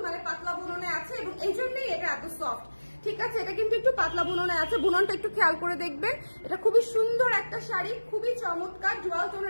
মানে পাতলা বুননে আছে এবং এই জন্যই এটা এত সফট, ঠিক আছে? এটা কিন্তু একটু পাতলা বুননে আছে, বুননটা একটু খেয়াল করে দেখবেন। এটা খুবই সুন্দর একটা শাড়ি, খুবই চমৎকার ডুয়াল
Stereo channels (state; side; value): inverted; both; correlation -1.00